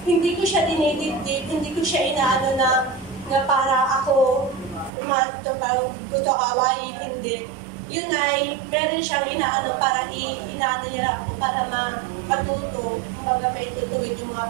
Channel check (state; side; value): drops out; left; at 4.9 s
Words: Hindi ko siya dinidibdib, hindi ko siya inaano na para ako gusto kawain, hindi. Yun ay, meron siyang inaano para inaano niya ako para matuto, may tutuwid yung